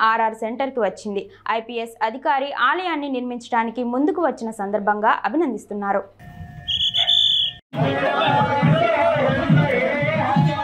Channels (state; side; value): identical; both; correlation 1.00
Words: ఆర్ఆర్ సెంటర్కి వచ్చింది. ఐపీఎస్ అధికారి ఆలయాన్ని నిర్మించడానికి ముందుకు వచ్చిన సందర్భంగా అభినందిస్తున్నారు.